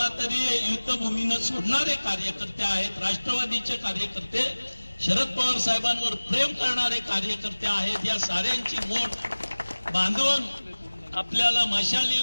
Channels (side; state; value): both; inverted; correlation -1.00